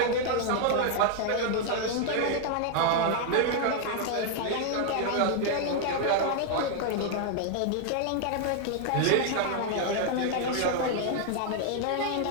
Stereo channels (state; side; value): different; both; correlation 0.00